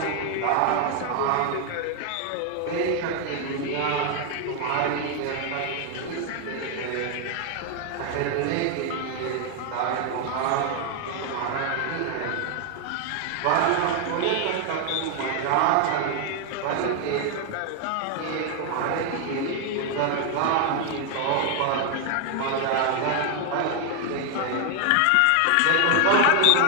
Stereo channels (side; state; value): both; different; correlation 0.00